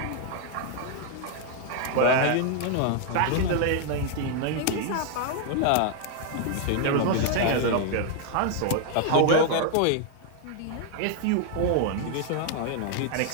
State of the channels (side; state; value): both; different; correlation 0.00